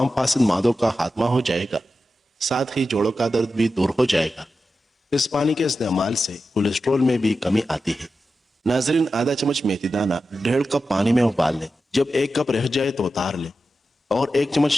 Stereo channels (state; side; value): normal; both; correlation 0.91